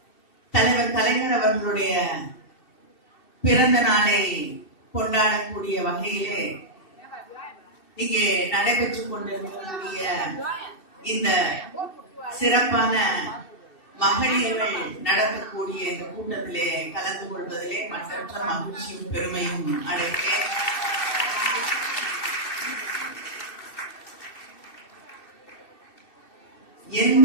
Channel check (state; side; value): late; right; 2.7 ms